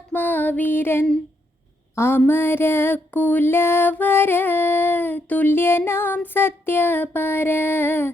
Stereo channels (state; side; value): normal; both; correlation 0.77